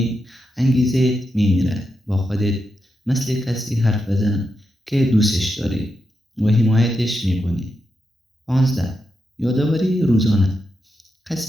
انگیزه می میرد. با خودت مثل کسی حرف بزن که دوستش داری و حمایتش می کنی. 15، یادآوری روزانه.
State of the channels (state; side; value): normal; both; correlation 0.86